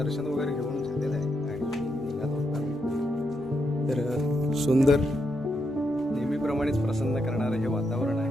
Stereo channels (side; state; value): both; normal; correlation 0.81